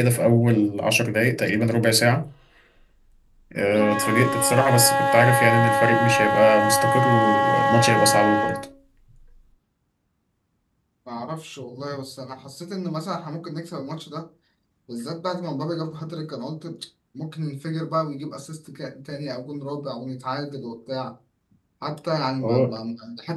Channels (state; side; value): identical; both; correlation 1.00